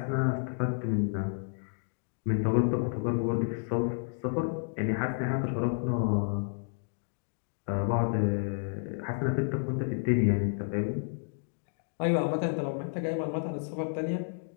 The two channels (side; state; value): right; silent; digital silence